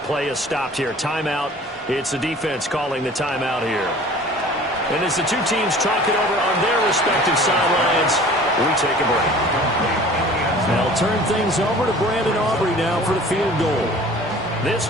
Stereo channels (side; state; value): both; normal; correlation 0.46